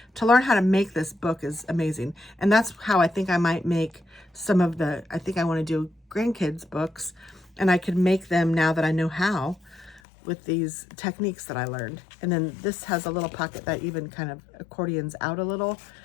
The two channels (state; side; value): drops out; right; at 10.0 s